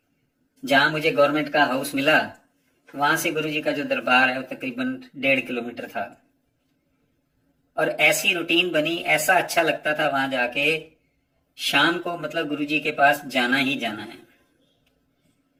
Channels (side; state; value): both; identical; correlation 1.00